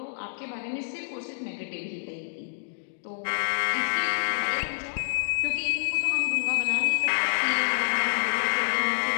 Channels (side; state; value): right; silent; digital silence